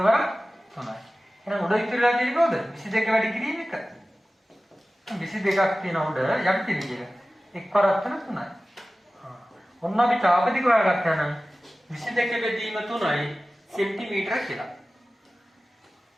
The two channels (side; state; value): both; normal; correlation 0.96